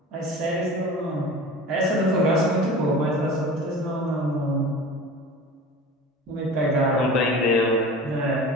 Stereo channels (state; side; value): normal; both; correlation 0.37